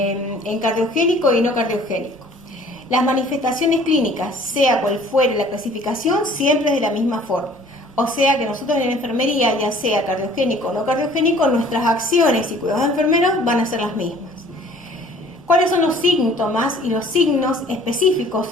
cardiogénico y no cardiogénico. Las manifestaciones clínicas, sea cual fuere la clasificación, siempre es de la misma forma. O sea que nosotros en la enfermería, ya sea cardiogénico o no cardiogénico, nuestras acciones y cuidados de enfermeros van a ser las mismas. ¿Cuáles son los síntomas y los signos específicos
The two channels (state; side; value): noise; right; rumble, 29 dB below the sound